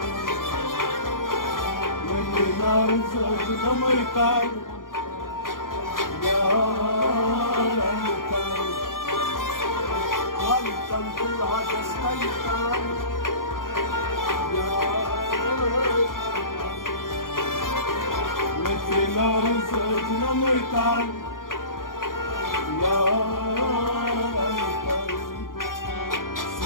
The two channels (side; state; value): right; late; 0.90 ms